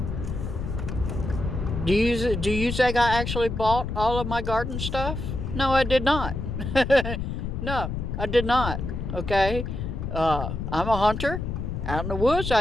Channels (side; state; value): left; noise; rumble, 4 dB below the sound